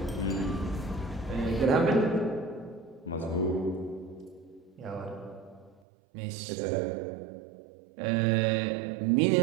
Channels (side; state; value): left; drops out; at 5.8 s